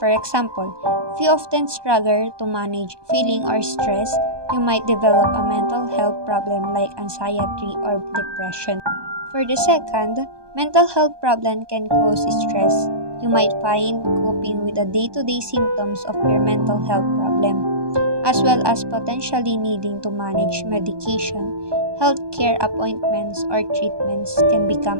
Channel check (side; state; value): left; late; 1.2 ms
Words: example, if you often struggle to manage feeling or stress, you might develop a mental health problem like anxiety or depression. For the second, mental health problem can cause stress. You might find coping with the day-to-day symptoms of your mental health problem, as well as potentially needing to manage medication. Healthcare appointments or treatments can